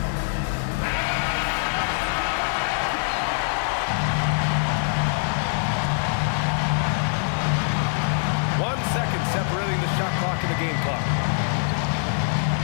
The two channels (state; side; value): silent; right; 63 dB below the other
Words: Separating the shot clock and the game clock.